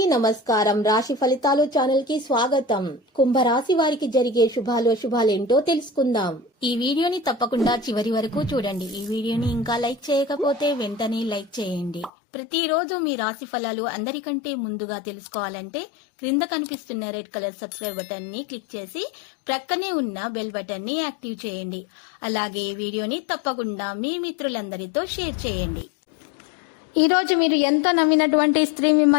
నమస్కారం. రాశి ఫలితాలు ఛానల్ కి స్వాగతం. కుంభరాశి వారికి జరిగే శుభాలేంటో తెలుసుకుందాం. ఈ వీడియోని తప్పకుండా చివరి వరకు చూడండి. ఈ వీడియోని ఇంకా లైక్ చేయకపోతే వెంటనే లైక్ చేయండి. ప్రతిరోజు మీ రాశి ఫలాలు అందరికంటే ముందుగా తెలుసుకోవాలంటే క్రింద కనిపిస్తున్న రెడ్ కలర్ సబ్స్క్రైబ్ బటన్ ని క్లిక్ చేసి ప్రక్కనే ఉన్న బెల్ బటన్ ని యాక్టివ్ చేయండి. అలాగే ఈ వీడియోని తప్పకుండా మీ మిత్రులందరితో షేర్ చేయండి. ఈ రోజు మీరు ఎంత నమ్మినటువంటి స్త్రీ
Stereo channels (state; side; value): drops out; right; at 12.1 s